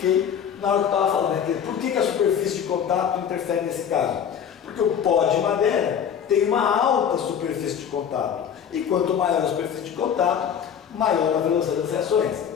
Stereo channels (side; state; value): right; quieter; 8.2 dB